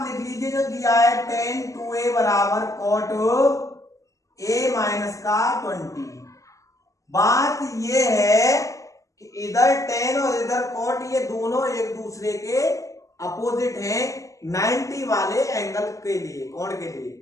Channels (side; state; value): right; late; 0.16 ms